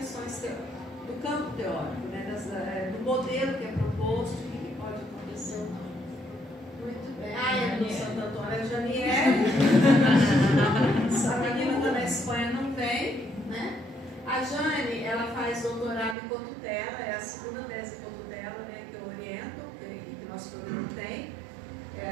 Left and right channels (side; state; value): left; drops out; at 16.2 s